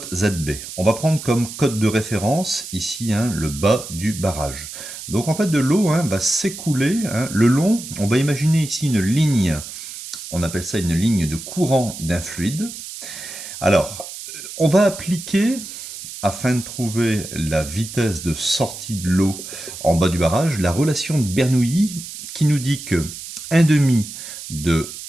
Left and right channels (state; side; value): noise; right; hiss, 11 dB below the sound